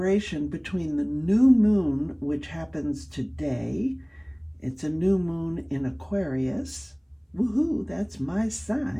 between the new moon, which happens today. It's a new moon in Aquarius. Woohoo, that's my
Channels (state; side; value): identical; both; correlation 1.00